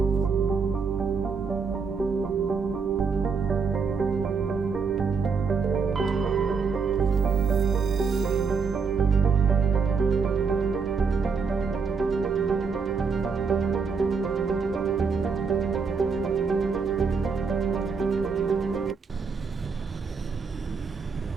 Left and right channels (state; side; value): quieter; left; 5.3 dB